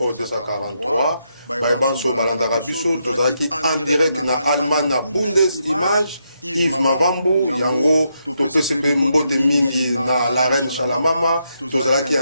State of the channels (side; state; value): both; inverted; correlation -0.80